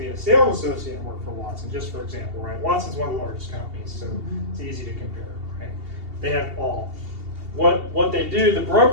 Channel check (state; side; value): late; left; 2.8 ms